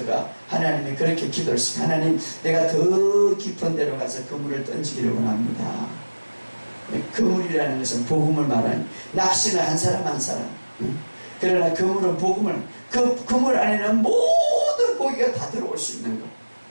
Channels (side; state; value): both; inverted; correlation -1.00